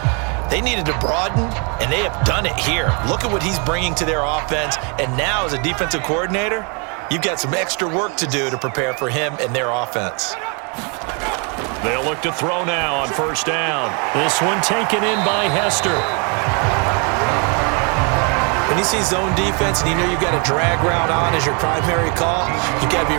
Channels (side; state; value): left; quieter; 35.1 dB